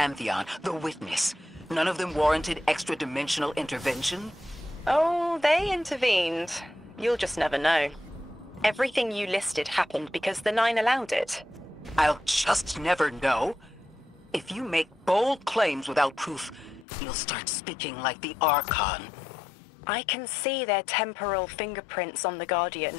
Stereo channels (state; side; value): drops out; right; at 16.9 s